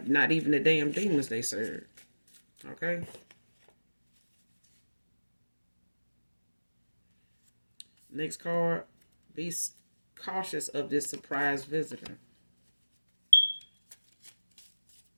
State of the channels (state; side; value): inverted; both; correlation -1.00